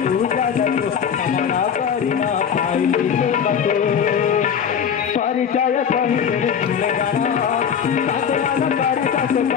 উজাগতু কামনা করি না পাইলি তোমাকে পরিচয় কহিলে ভুলে জানা সাধনা করি কাছে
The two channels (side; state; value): right; quieter; 7.7 dB